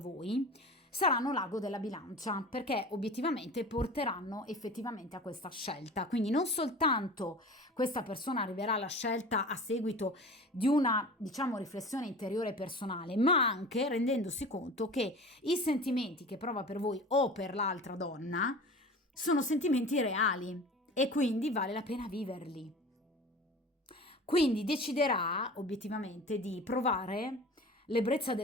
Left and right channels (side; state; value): both; normal; correlation 0.38